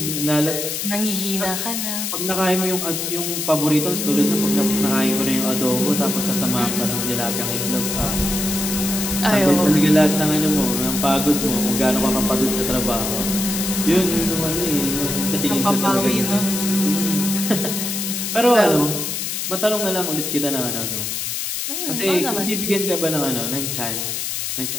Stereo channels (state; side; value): noise; left; hiss, 3 dB below the sound